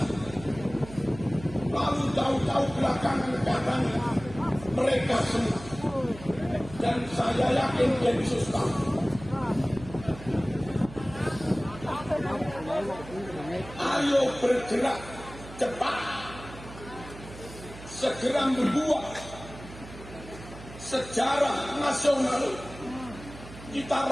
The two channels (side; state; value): right; noise; hum, 15 dB below the sound